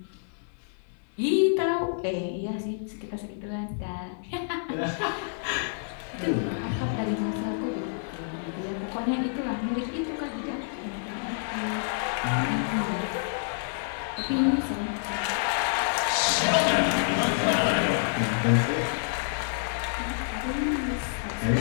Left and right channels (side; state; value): right; silent; 59 dB below the other